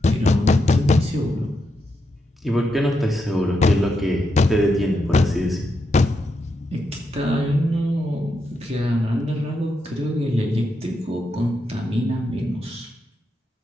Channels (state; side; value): normal; both; correlation 0.83